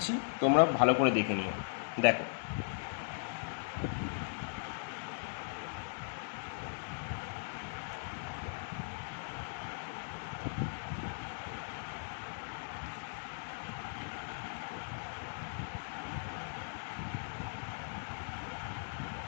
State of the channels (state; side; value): silent; right; digital silence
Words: তোমরা ভালো করে দেখে নিও। দেখো,